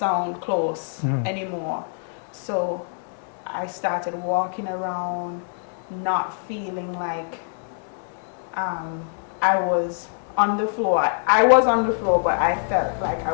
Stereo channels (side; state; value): right; silent; digital silence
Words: close anymore. So I started walking around, not feeling like I was on the floor. I was on the floor, but I felt like I